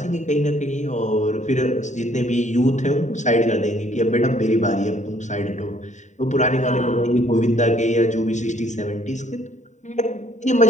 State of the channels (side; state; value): right; late; 0.34 ms